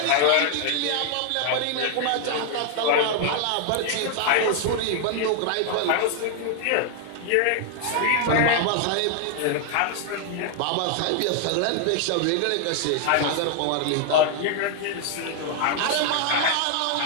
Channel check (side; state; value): both; different; correlation 0.00